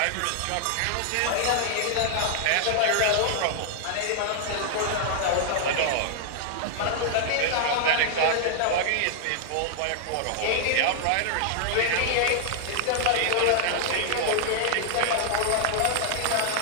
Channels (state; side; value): different; both; correlation -0.01